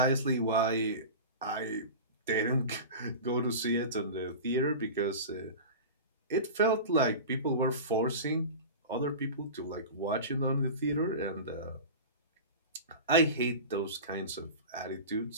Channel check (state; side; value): inverted; both; correlation -0.30